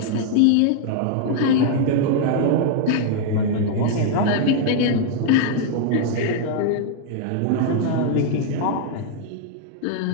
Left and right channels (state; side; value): different; both; correlation 0.00